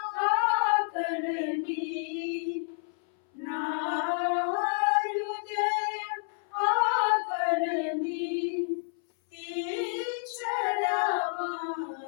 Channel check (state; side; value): silent; right; 58 dB below the other